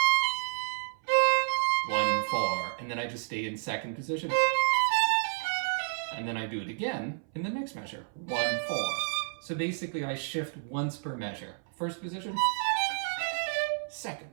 1, 4, and then I just stay in second position. And then I do it again in the next measure, 1, 4. So basically I shift once per measure. First position,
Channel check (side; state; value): left; silent; 57 dB below the other